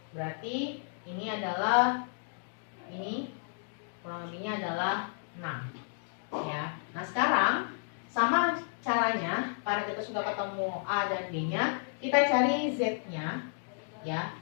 berarti ini adalah, ini kurang lebihnya adalah 6, ya. Nah sekarang sama caranya, karena kita sudah ketemu A dan B nya, kita cari Z nya, ya.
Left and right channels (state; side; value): silent; right; digital silence